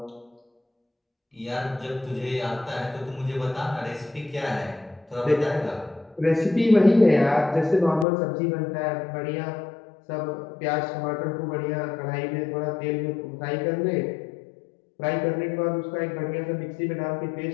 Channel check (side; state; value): right; drops out; at 8.1 s